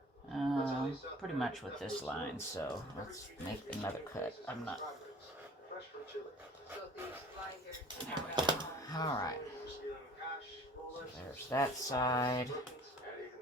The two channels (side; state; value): both; normal; correlation 0.48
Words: pretty much with this line. So let's make another cut. I'm not. There we go. Alright. So there's that side.